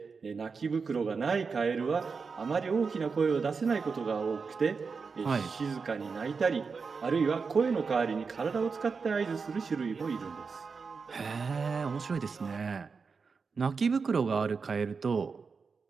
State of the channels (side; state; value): left; quieter; 5.1 dB